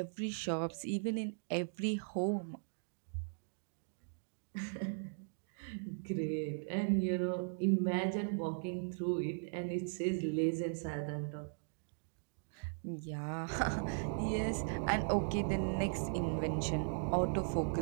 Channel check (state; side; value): silent; left; digital silence